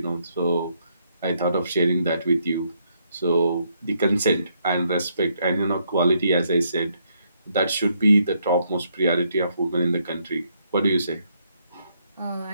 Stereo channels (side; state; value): both; inverted; correlation -0.74